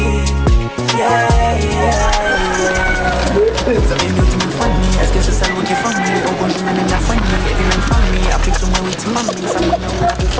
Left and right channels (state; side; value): identical; both; correlation 1.00